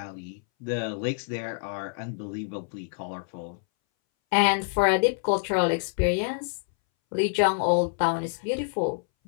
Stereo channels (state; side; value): silent; right; 60 dB below the other